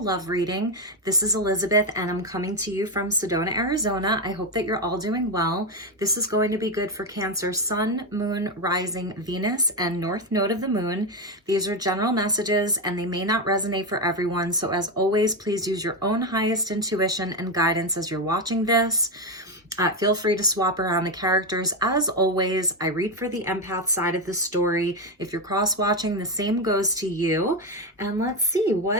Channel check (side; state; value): both; normal; correlation 0.09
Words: love reading. This is Elizabeth, and I'm coming to you from Sedona, Arizona. I hope that you're all doing well. This is going to be good for Cancer, Sun, Moon, Rising, Venus, and North Node of the Moon. These are general messages, and they may not resonate for everyone. So as always, please use your own highest intuition and guidance as you're watching this. Feel free to swap around the characters. As always, I read for the empath side of the story. If you're cross-watching, the same goes to you. And let's see